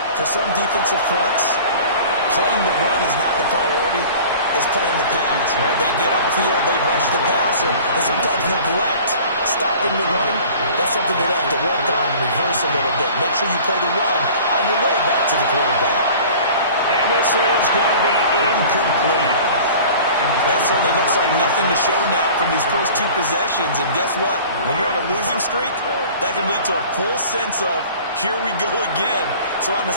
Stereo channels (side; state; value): both; inverted; correlation -0.44